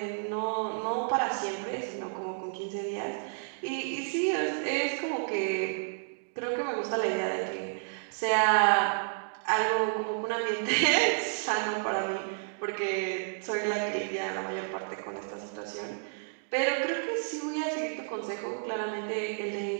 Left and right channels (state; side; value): silent; left; 57 dB below the other